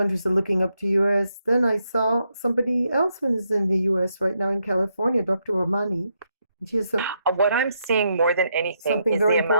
are looking up to US, then I saw somebody else who is in the US right now in California, Dr. Ramani, and she has What I'm seeing more than anything something is very the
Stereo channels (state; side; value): inverted; both; correlation -0.79